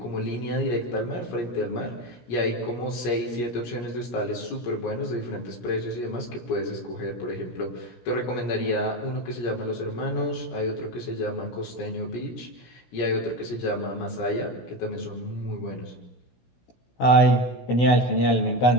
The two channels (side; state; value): right; late; 17 ms